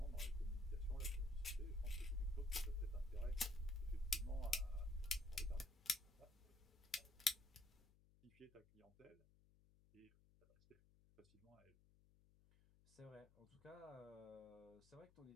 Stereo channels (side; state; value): left; noise; hum, 27 dB below the sound